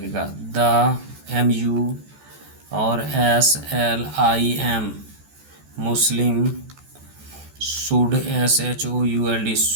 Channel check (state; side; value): late; left; 14 ms